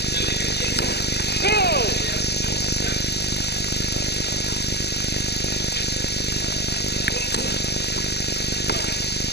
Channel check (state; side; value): late; right; 0.48 ms